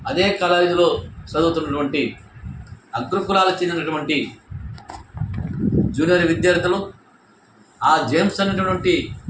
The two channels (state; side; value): identical; both; correlation 1.00